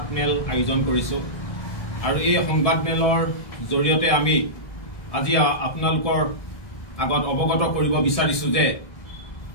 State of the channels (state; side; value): late; right; 1.7 ms